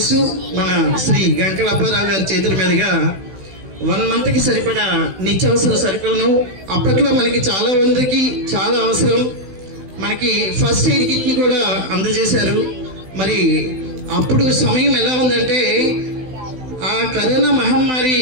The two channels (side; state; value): left; late; 16 ms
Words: మన శ్రీ గంకల అప్పారావు గారి చేతుల మీదుగా 1 monthకి సరిపడా నిత్యావసర సరుకులను అప్పట్లో మనకి చాలా మందికి చాలా అవసరం, మనకి ఫస్ట్ ఎయిడ్ కిట్ని కూడా అందజేశారు. మరి అప్పుడు సమయం ఎలా ఉందంటే ఆ కరోనా మహమ్మారి